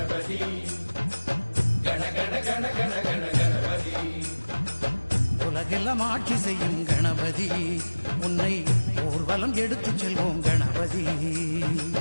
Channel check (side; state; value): both; inverted; correlation -1.00